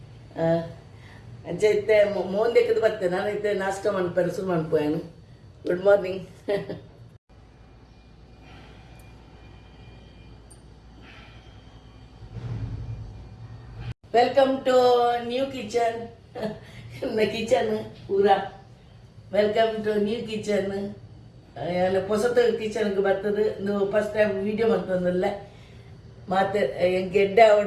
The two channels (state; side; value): identical; both; correlation 1.00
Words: ಅಂಚೈತೆ ಮೋಂದೆಕ್ಕದು ಬರ್ತೇನೆ ನಾನೈತೆ ನಾಷ್ಟ ಮಾಡ್ಪೇನೆ ಶುರು ಮಾಡ್ಪೋಯನು good morning welcome to new kitchen kitchen ಪೂರಾ ವೆಲ್ಕಮ್ ಟು ನ್ಯೂ ಕಿಚನ್ ಹೊಸತ ಕಿಚನ್ಗೆ ಬರ್ತದೆ ನೀವು ಫಸ್ಟ್ ಟೈಮ್ ವೀಡಿಯೋ ಮಾಡ್ತಂದಲ್ಲ ಮತ್ತೆ ಎಡ್ಡೆ